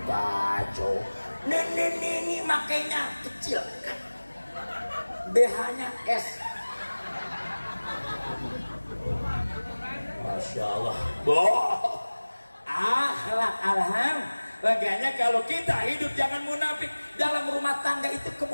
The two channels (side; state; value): both; inverted; correlation -1.00